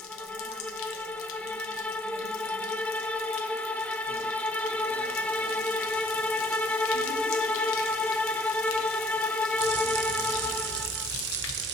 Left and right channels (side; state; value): both; normal; correlation 0.59